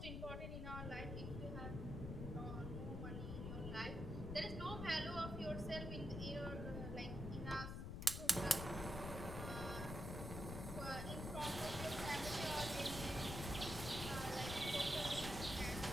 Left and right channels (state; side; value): noise; left; rumble, 4 dB below the sound